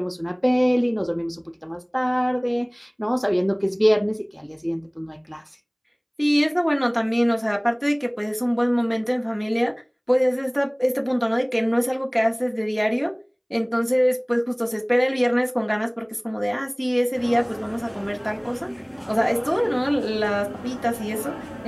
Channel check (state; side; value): identical; both; correlation 1.00